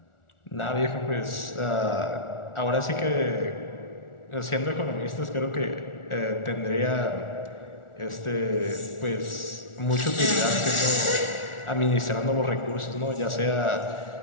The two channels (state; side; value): late; right; 1.4 ms